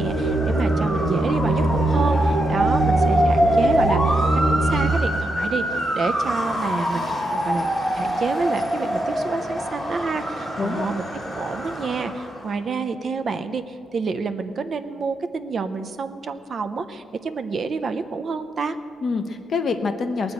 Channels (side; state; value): both; normal; correlation 0.83